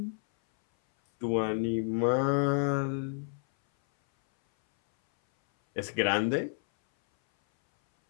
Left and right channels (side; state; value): right; silent; 58 dB below the other